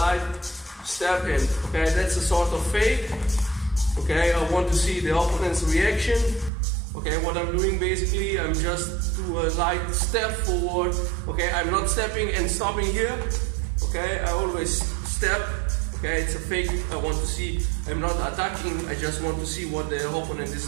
step in. Okay, that's a sort of fake. Okay, I want to see the opponent's reaction. Okay, what I'm doing basically, I'm just do a light step forward. Okay, I'm not stepping and stopping here. Okay, I always step. Okay, it's a fake. I want to see. I'm not attacking. I just want to see what the opponent is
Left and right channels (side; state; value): left; drops out; at 6.5 s